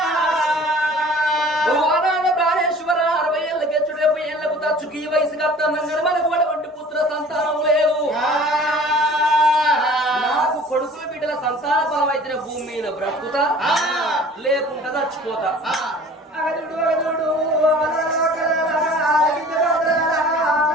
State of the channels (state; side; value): normal; both; correlation 0.47